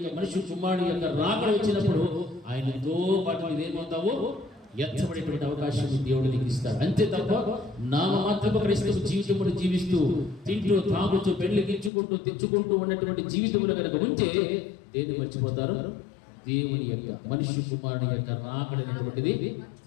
మనిషి కుమారుడు యొక్క రాకడ వచ్చినప్పుడు ఆయనతో పాటు నీవేమవుతావో ఎత్తబడేటువంటి అవకాశం దేవుడు నీకు ఇస్తాడు. అంతే తప్ప నామమాత్రపు క్రైస్తవ జీవితమును జీవిస్తూ తింటూ తాగుతూ పెళ్లికించుకుంటూ తెచ్చుకుంటూ ఉన్నటువంటి జీవితములు కనుక ఉంటే దేన్ని మర్చిపోతారు? దేవుని యొక్క మనిషి కుమారుడు యొక్క రాకడ అనేటువంటిది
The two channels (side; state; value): right; drops out; at 11.9 s